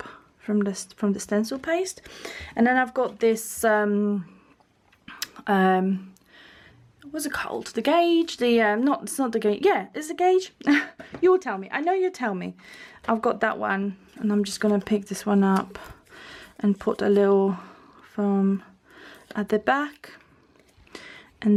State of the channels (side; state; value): both; identical; correlation 1.00